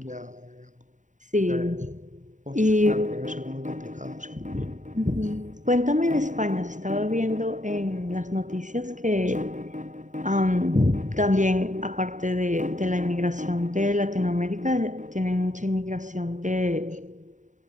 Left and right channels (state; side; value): late; left; 0.36 ms